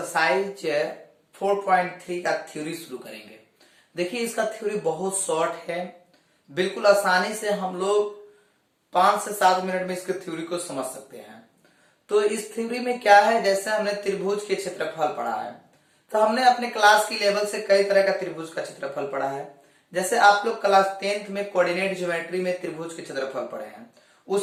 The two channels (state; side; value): identical; both; correlation 1.00